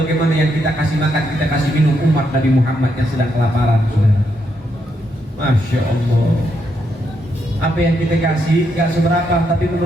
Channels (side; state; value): both; normal; correlation 0.79